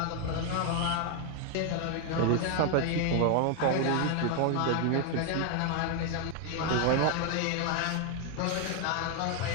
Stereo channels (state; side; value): different; both; correlation 0.00